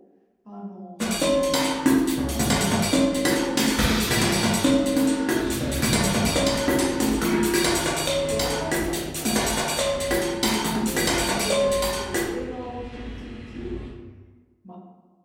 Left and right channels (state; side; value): identical; both; correlation 1.00